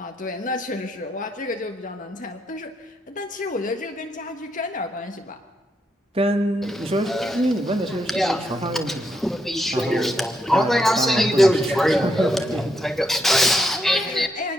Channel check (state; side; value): normal; both; correlation 0.79